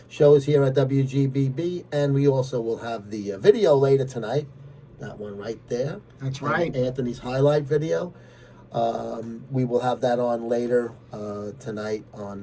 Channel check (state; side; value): identical; both; correlation 1.00